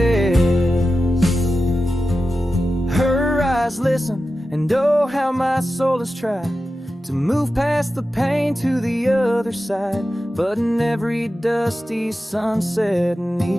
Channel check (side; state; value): both; normal; correlation 0.92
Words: Her eyes listen, and oh how my soul has tried to move past the pain to the other side. But in every dusty sunset and